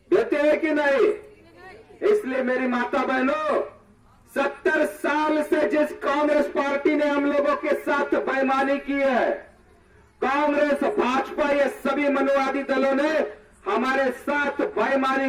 देते हैं कि नहीं? इसलिए मेरी माता बहनों, 70 साल से जिस कांग्रेस पार्टी ने हम लोगों के साथ बेईमानी की है, कांग्रेस, भाजपा, ये सभी मनुवादी दलों ने हमारे साथ बेईमानी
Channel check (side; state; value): both; identical; correlation 1.00